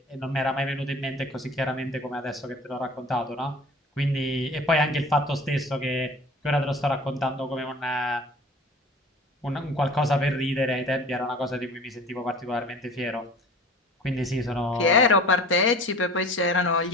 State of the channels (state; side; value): normal; both; correlation 0.43